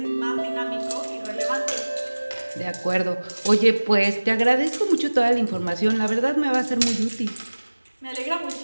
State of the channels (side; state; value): both; inverted; correlation -1.00